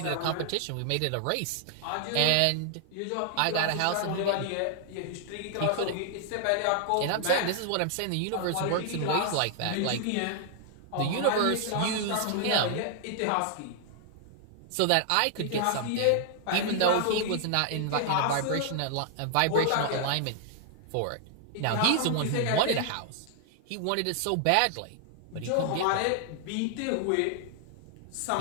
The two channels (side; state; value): both; different; correlation 0.00